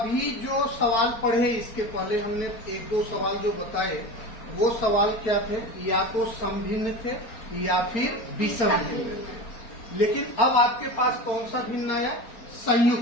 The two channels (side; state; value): right; late; 4.4 ms